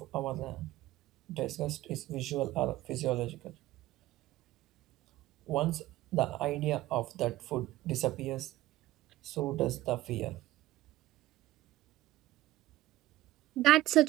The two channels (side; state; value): left; quieter; 15.8 dB